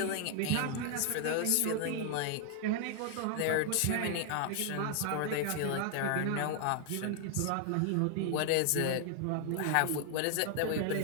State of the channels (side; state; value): both; different; correlation 0.00